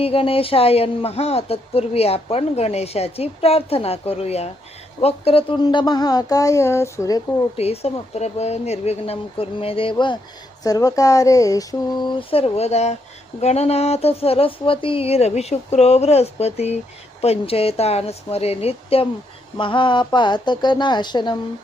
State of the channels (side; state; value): both; normal; correlation 0.77